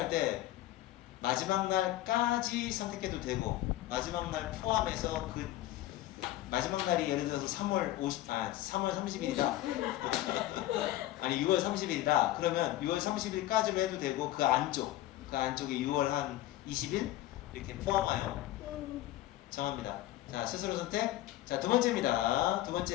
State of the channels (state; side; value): quieter; right; 15.3 dB